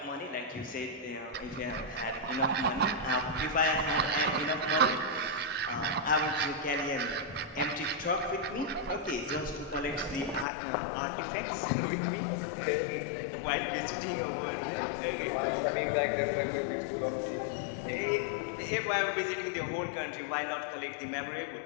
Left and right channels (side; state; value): right; drops out; at 10.5 s